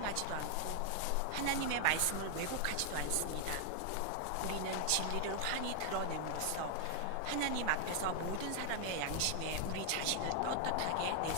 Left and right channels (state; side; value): different; both; correlation 0.00